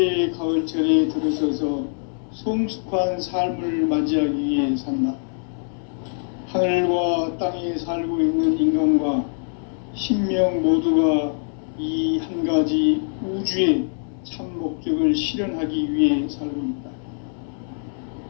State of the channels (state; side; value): silent; right; digital silence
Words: 가을철에 들어서서 성숙한 삶을 맞이하기 위해 산다. 하늘과 땅에 살고 있는 인간과 신명 모두가 이 한 가지 우주의 참 목적을 실현하기 위해 살고 있다.